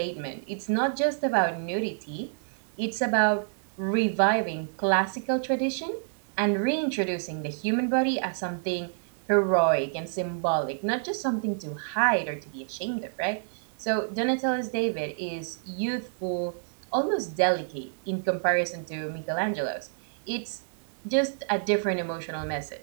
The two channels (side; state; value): left; silent; digital silence